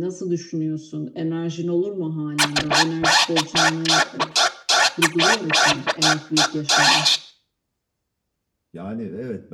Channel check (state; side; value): identical; both; correlation 1.00